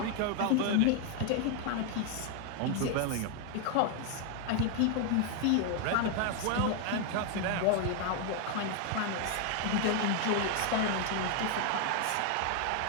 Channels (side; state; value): both; different; correlation 0.01